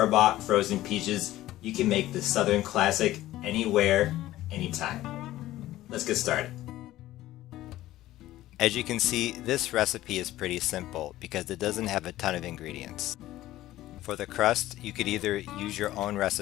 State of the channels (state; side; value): quieter; right; 15.3 dB